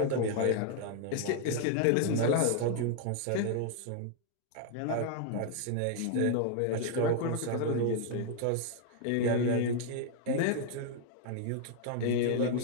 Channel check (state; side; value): different; both; correlation 0.00